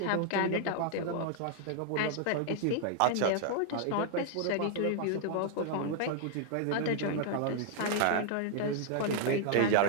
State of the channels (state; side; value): different; both; correlation 0.00